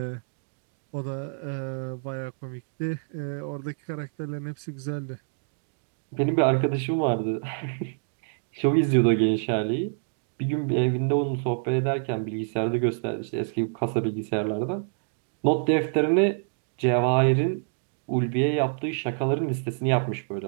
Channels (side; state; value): left; silent; digital silence